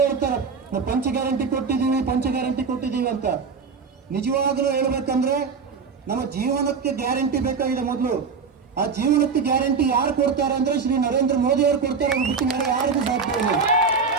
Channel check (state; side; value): quieter; left; 5.3 dB